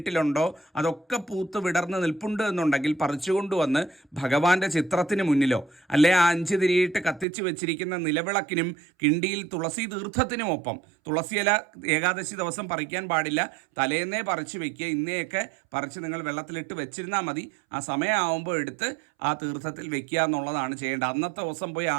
അതൊക്കെ പൂത്ത് വിടർന്ന് നിൽപ്പുണ്ട് എന്നുണ്ടെങ്കിൽ പറിച്ചുകൊണ്ടുവന്ന് ഭഗവാന്റെ ചിത്രത്തിന് മുന്നിലോ അല്ലെ ആ 5 തിരിയിട്ട് കത്തിച്ച് വെച്ചിരിക്കുന്ന നിലവിളക്കിനും കിണ്ടിയിൽ തുളസി തീർത്ഥത്തിനുമൊപ്പം, തുളസിയില ഏകാദശി ദിവസം പറിക്കാൻ പാടില്ല, തലേന്നേ പറിച്ച് വെക്കുക. ഇന്നേയൊക്കെ പറിച്ച് നിങ്ങൾ വെള്ളത്തിലിട്ട് വെച്ചിരുന്നാൽ മതി. ആ സമയമാകുമ്പോൾ എടുത്ത് ആ തീർത്ഥത്തിൽ വെക്കുക എന്നുള്ളതാണ് ചെയ്യേണ്ടത്. അന്നത്തെ ദിവസം പോയി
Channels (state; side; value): drops out; left; at 7.2 s